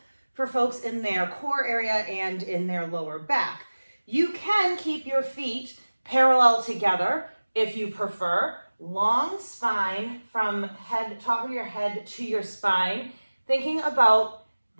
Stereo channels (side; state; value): both; inverted; correlation -1.00